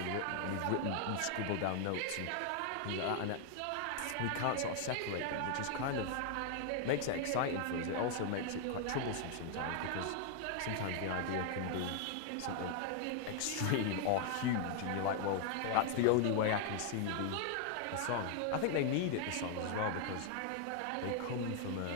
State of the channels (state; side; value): different; both; correlation 0.00